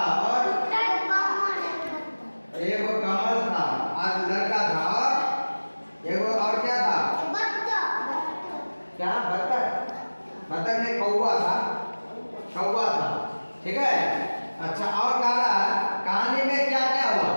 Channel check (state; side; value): inverted; both; correlation -1.00